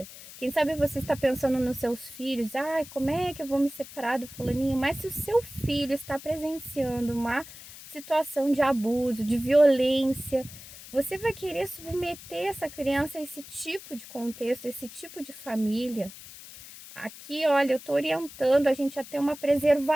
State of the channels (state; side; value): noise; left; hiss, 16 dB below the sound